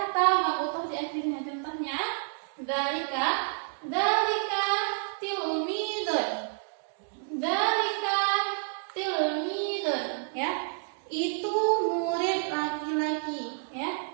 ta marbutah di akhirnya. Contohnya dzalika tilmidun. Dzalika tilmidun, ya. Itu murid laki-laki, ya.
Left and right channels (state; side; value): silent; left; 58 dB below the other